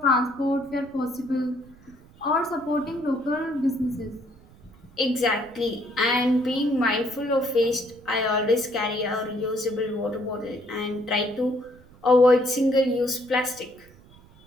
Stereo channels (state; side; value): noise; right; rumble, 25 dB below the sound